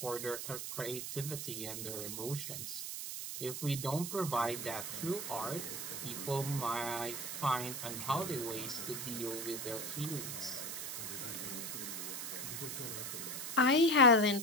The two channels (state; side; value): noise; right; hiss, 5 dB below the sound